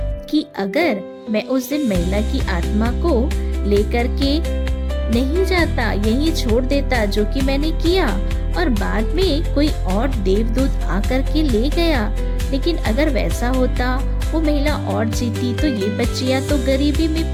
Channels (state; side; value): identical; both; correlation 1.00